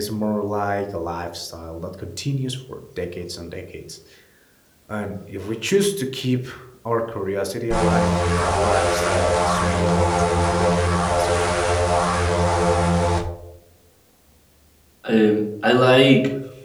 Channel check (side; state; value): both; identical; correlation 1.00